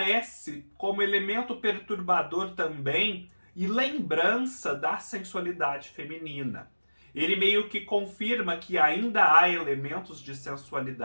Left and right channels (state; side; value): inverted; both; correlation -1.00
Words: como elemento perturbador também e lembrança da sensualidade feminina. Ele meio que confirma que ainda há elementos de